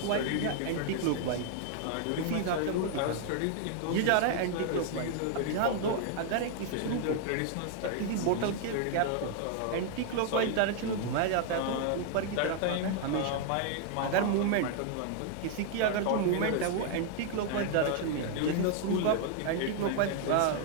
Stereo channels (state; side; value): different; both; correlation 0.00